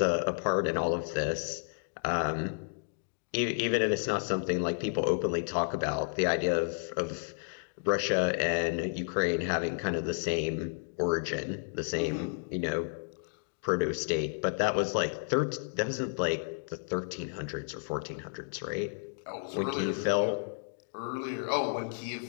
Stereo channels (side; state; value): right; silent; digital silence